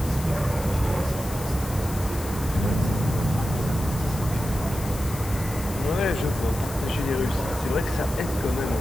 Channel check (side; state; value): left; noise; hiss, 13 dB below the sound